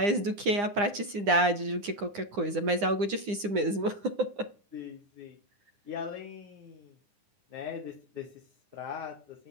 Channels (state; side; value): late; left; 9.8 ms